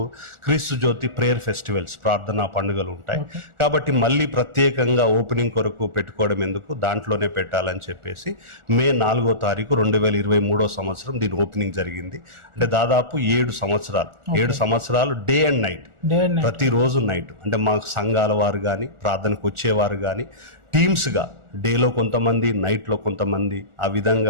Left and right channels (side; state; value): left; late; 1.4 ms